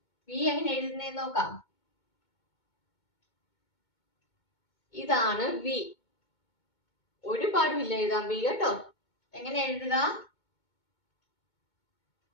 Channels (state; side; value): late; right; 2.2 ms